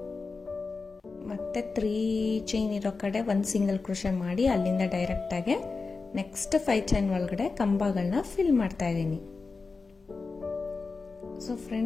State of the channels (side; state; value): right; quieter; 4.2 dB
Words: ಮತ್ತೆ 3 ಚೈನ್ ಇರೋ ಕಡೆ 1 ಸಿಂಗಲ್ ಕ್ರೋಶೆ ಮಾಡಿ ಅಲ್ಲಿಂದ ಡೈರೆಕ್ಟಾಗಿ ನೆಕ್ಸ್ಟ್ 5 ಚೈನ್ ಒಳಗಡೆ ಕಂಬಗಳನ್ನ ಫಿಲ್ ಮಾಡ್ತಾ ಇದ್ದೀನಿ. ಸೊ